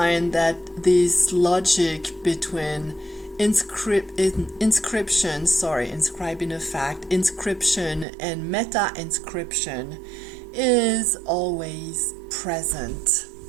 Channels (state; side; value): drops out; left; at 8.1 s